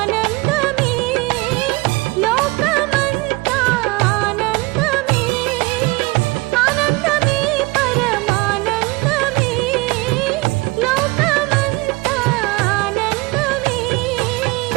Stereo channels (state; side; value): quieter; left; 24.0 dB